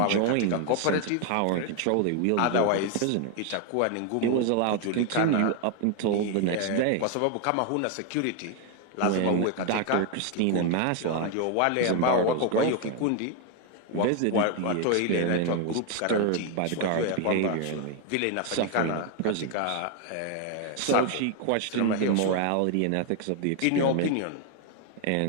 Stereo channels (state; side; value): different; both; correlation 0.01